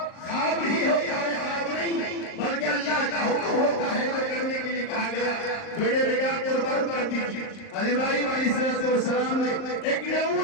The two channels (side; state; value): right; late; 38 ms